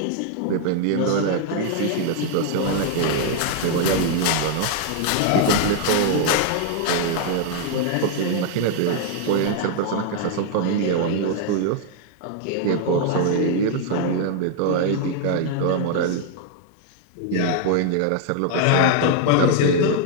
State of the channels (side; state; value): both; different; correlation 0.00